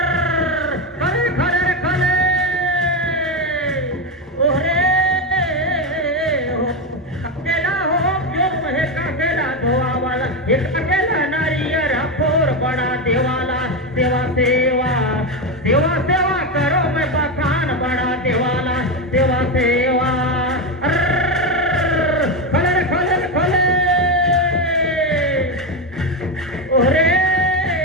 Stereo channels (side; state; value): both; normal; correlation 0.12